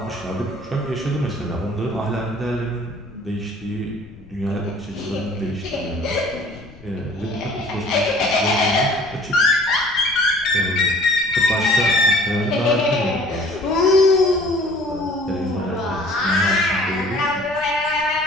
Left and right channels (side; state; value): left; noise; rumble, 21 dB below the sound